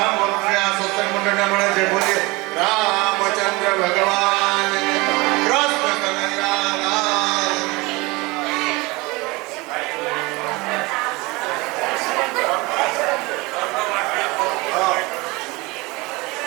ભરોસે આ સત્સંગ મંડળને મળે છે. બોલીએ રામચંદ્ર ભગવાન કૃષ્ણ કનૈયા લાલ.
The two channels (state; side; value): quieter; left; 24.0 dB